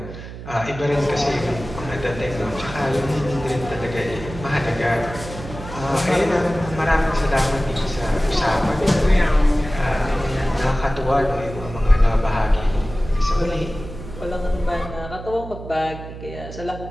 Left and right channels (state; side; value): noise; right; hum, 12 dB below the sound